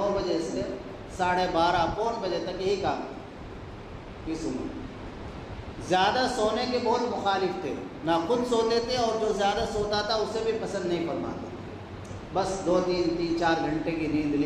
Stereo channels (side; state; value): both; identical; correlation 1.00